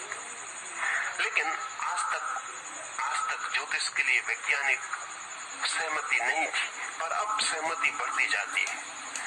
लेकिन आज तक ज्योतिष के लिए वैज्ञानिक सहमति नहीं थी, पर अब सहमति बढ़ती जाती है।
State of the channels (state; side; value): identical; both; correlation 1.00